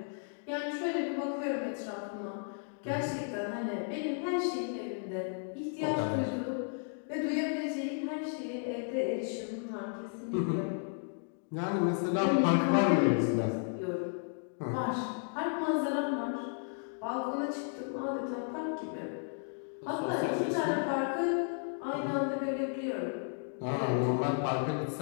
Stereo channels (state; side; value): silent; right; 55 dB below the other